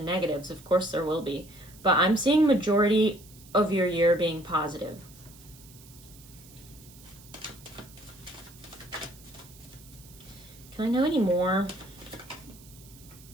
negatives. Of course there will be. But I'm seeing majority of your year being positive. Can I know any more?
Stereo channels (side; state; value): right; noise; hiss, 22 dB below the sound